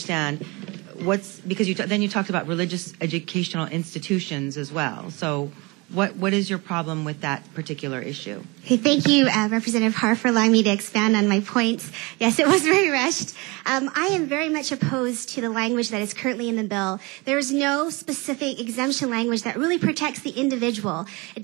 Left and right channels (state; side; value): quieter; left; 26.1 dB